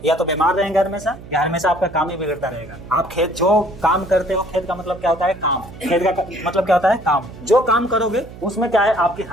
या तो बीमार रहेंगे हमेशा, या हमेशा आपका काम ही बिगड़ता रहेगा। आप खेत जो काम करते हो, खेत का मतलब क्या होता है, काम। खेत का मतलब क्या होता है, काम। जो काम करोगे उसमें क्या है, आपकी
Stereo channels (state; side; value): noise; right; hum, 16 dB below the sound